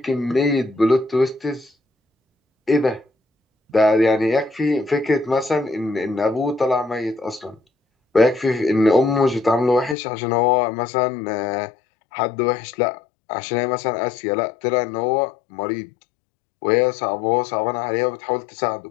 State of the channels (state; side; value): drops out; right; at 10.0 s